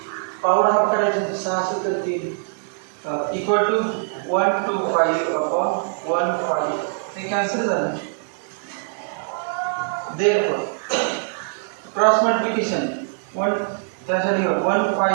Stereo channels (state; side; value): silent; left; digital silence